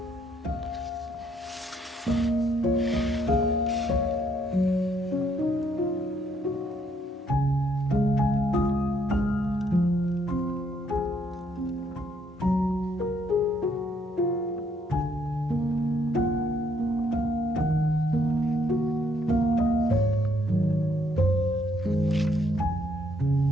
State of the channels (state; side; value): normal; both; correlation 0.70